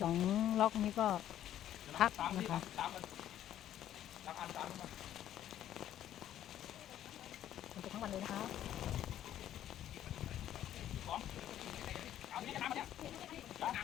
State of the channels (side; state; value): right; quieter; 11.6 dB